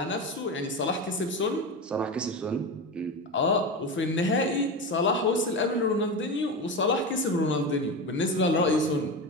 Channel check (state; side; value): normal; both; correlation 0.22